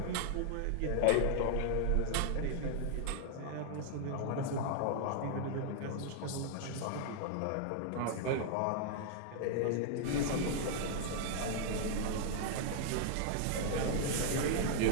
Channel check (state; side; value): different; both; correlation -0.01